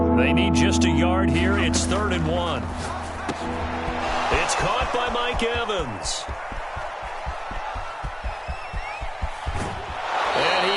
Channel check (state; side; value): identical; both; correlation 1.00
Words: They need just a yard here. It's 3rd and 1. It's caught by Mike Evans. And